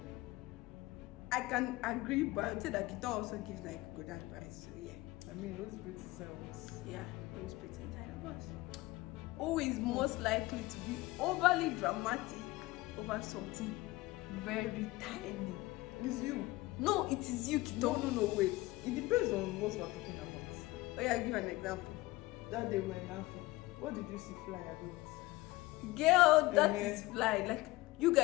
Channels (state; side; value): quieter; right; 19.7 dB